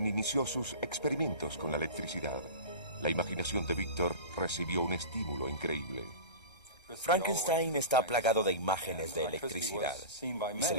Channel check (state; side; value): late; right; 1.3 ms